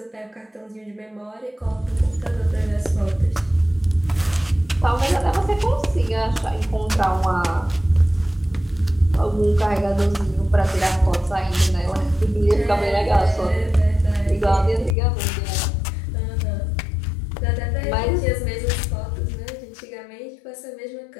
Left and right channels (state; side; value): drops out; right; at 15.0 s